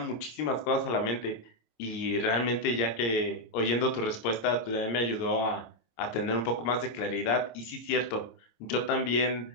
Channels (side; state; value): right; late; 26 ms